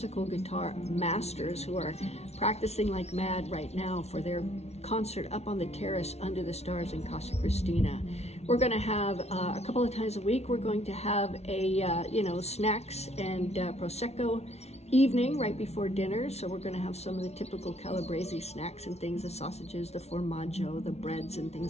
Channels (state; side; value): late; right; 0.31 ms